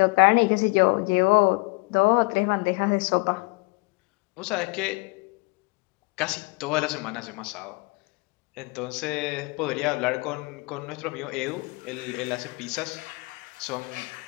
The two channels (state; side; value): quieter; right; 27.0 dB